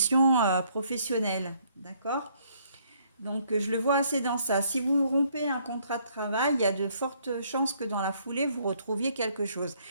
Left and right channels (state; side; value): inverted; both; correlation -0.67